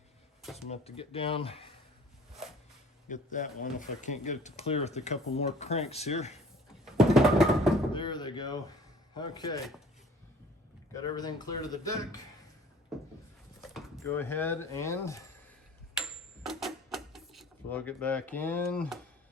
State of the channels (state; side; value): normal; both; correlation 0.50